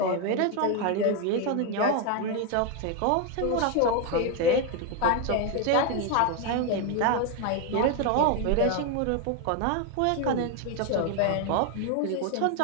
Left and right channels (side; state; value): both; different; correlation 0.01